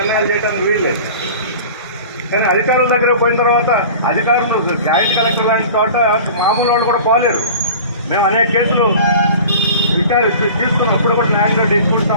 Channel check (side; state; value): both; inverted; correlation -0.40